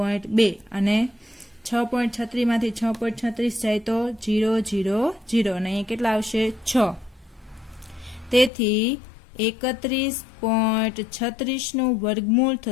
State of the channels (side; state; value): right; drops out; at 8.5 s